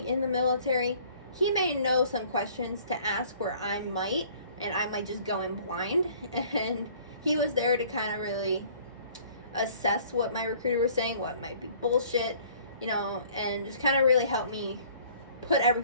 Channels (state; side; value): inverted; both; correlation -0.54